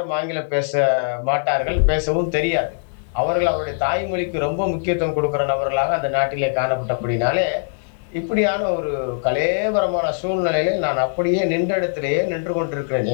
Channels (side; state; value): right; silent; digital silence